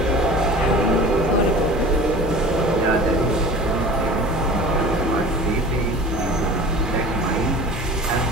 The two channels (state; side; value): normal; both; correlation 0.40